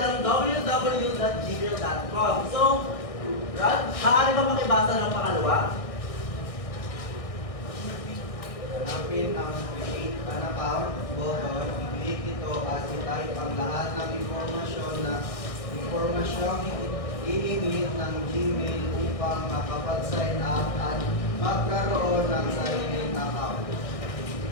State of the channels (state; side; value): late; right; 1.6 ms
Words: ang www.gmail.com. So, Rod, maaari ba makibasa ng pangalawa? Hanapin ang create an account button, i-click ito at i-type ang lahat ng impormasyong i-emit ng Gmail upang makapag-sign up at magkaroon ng sariling account.